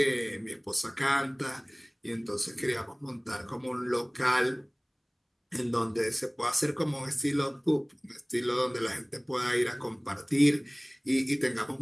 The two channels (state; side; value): identical; both; correlation 1.00